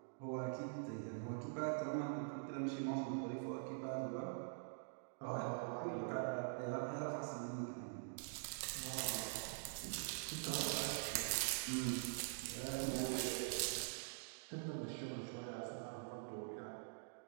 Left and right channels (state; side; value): silent; left; digital silence